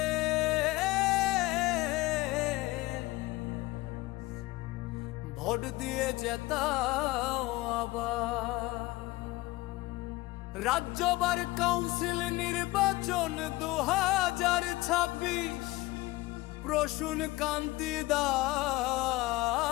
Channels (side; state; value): right; quieter; 19.9 dB